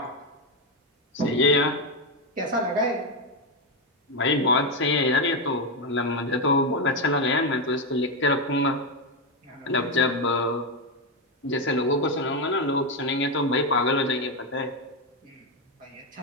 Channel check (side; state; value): both; normal; correlation 0.07